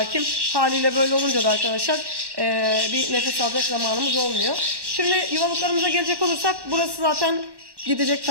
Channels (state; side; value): late; left; 1.1 ms